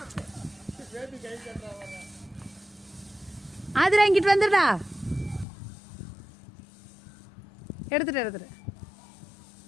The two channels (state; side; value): drops out; right; at 5.5 s